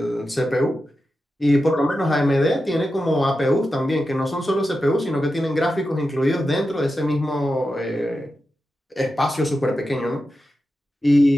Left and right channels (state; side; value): normal; both; correlation 0.90